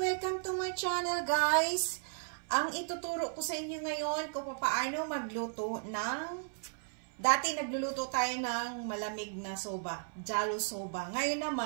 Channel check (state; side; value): silent; left; 54 dB below the other